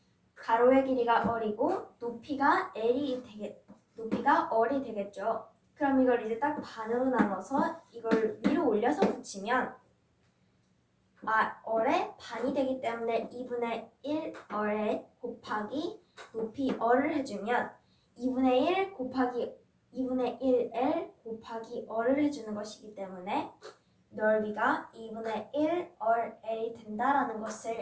가로의 길이가 R이고 높이가 L이 높이가 R이 되겠죠. 그럼 이걸 이제 딱 반으로 나눠서 이걸 위로 올려서 붙이면 R의 반이 되기 때문에 2분의 1 R에 곱하기 높이 R을 해주면 2분의 1 곱하기 2분의 1L 곱하기 R을 해주는 것이기 때문에 넓이가 2분의 1 RL이 된다라는 것을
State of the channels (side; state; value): both; identical; correlation 1.00